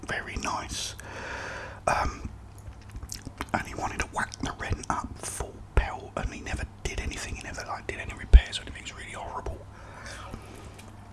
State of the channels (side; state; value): both; identical; correlation 1.00